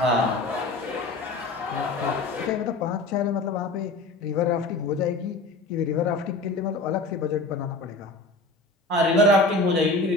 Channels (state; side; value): quieter; right; 3.1 dB